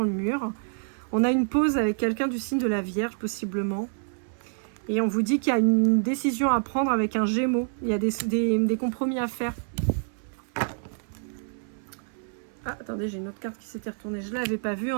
le mur. On a une pause avec quelqu'un du signe de la Vierge, possiblement. Et on vous dit qu'il y a une décision à prendre avec un Gémeaux. Il y a des compromis à faire. Ah, attendez, j'ai une autre carte qui s'était retournée. Je ne l'avais pas vue.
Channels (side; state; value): left; silent; 60 dB below the other